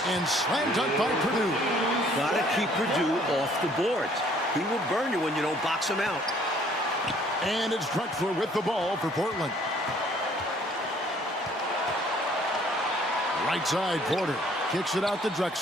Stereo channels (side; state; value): both; normal; correlation 0.60